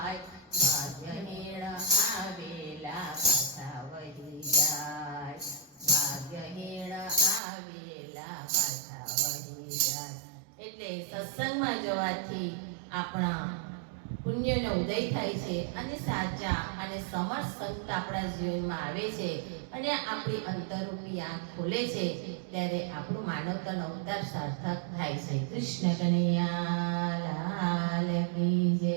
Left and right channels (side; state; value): left; drops out; at 7.4 s